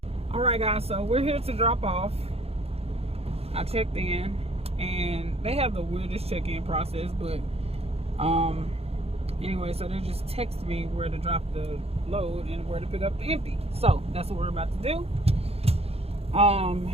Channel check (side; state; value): left; late; 0.29 ms